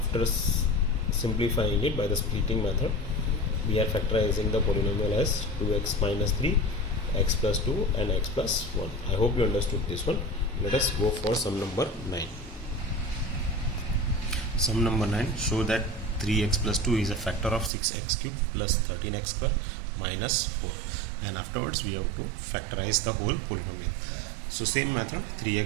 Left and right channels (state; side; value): drops out; left; at 17.7 s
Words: simplifying it by the splitting method, we are factorizing the polynomial as 2x minus 3, x plus 2 and x plus 1. I hope you understood this one. Let us go for sum number 9. Sum number 9, show that 3x plus 2 is a factor of 6x cube plus 13x square minus 4. And afterwards we have to factorize the whole polynomial. So same method,